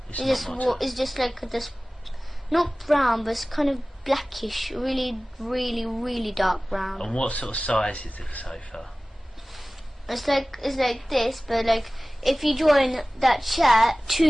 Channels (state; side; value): normal; both; correlation 0.98